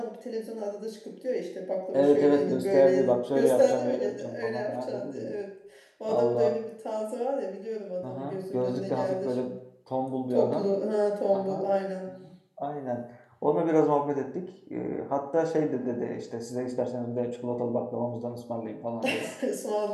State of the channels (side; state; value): both; identical; correlation 1.00